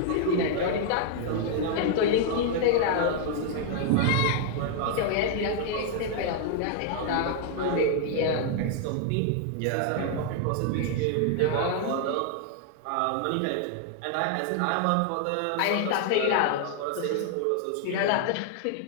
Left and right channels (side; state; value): both; different; correlation 0.00